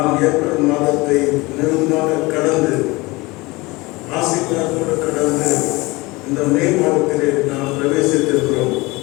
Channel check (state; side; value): quieter; right; 22.9 dB